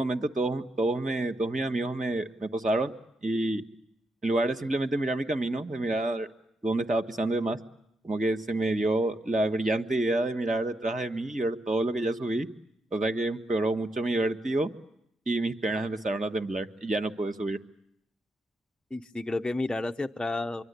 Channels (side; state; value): both; normal; correlation 0.82